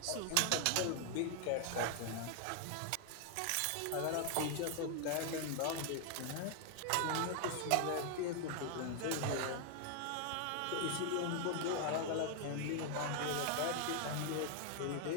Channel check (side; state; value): both; different; correlation 0.00